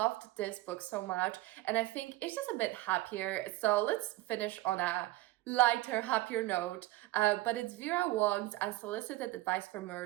this book so much, and I think it's just a bit happier. So let's finish on a lighter, happier note. But it's Vera Wong's Unsolicited Advice for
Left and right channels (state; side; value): quieter; left; 17.8 dB